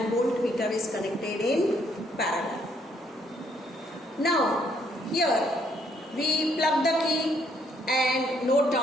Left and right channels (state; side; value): normal; both; correlation 0.69